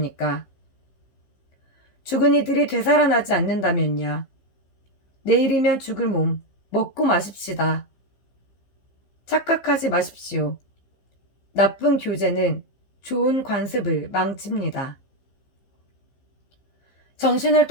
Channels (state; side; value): late; right; 15 ms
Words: 죽은 이들이 되살아나지 않는다면야 내일이면 죽을 몸 먹고 마십시다. 착각하지 마십시오. 나쁜 교제는 좋은 관습을 망칩니다. 정신을